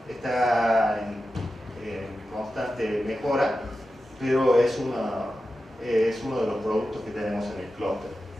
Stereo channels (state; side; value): normal; both; correlation 0.92